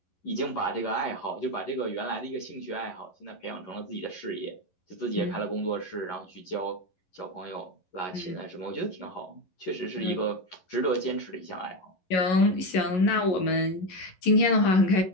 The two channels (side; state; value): right; late; 11 ms